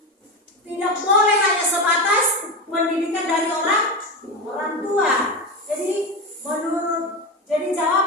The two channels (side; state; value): both; normal; correlation 0.18